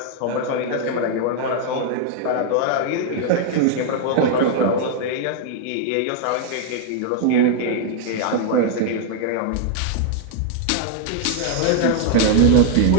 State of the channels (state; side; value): different; both; correlation 0.00